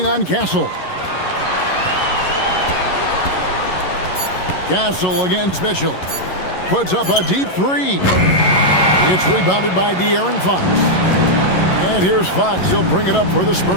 on Castle. Castle against Mitchell. Puts up a deep three. It's rebounded by De'Aaron Fox. And here's Fox. He'll bring it up for the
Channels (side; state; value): right; late; 11 ms